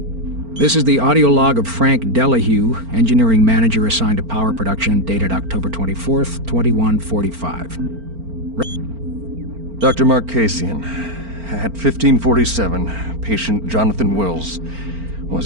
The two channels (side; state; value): left; late; 4.4 ms